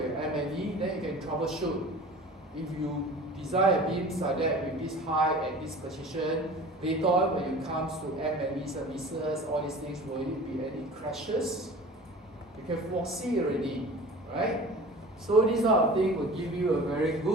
M&E, then you can troubleshoot. If you design a beam like that with this height and this position, later on when it comes to M&E services, all these things, will it be any crashes? can foresee already, right? So this sort of thing will give you a very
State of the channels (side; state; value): both; normal; correlation 0.41